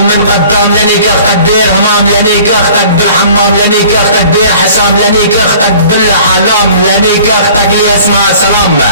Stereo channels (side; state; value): both; inverted; correlation -0.50